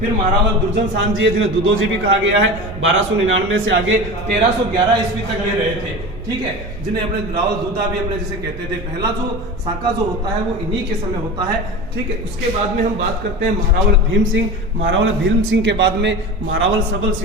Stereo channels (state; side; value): noise; right; rumble, 13 dB below the sound